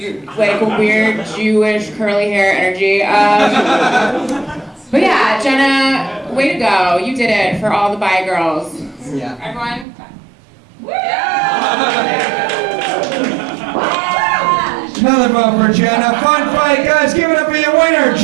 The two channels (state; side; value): drops out; left; at 9.9 s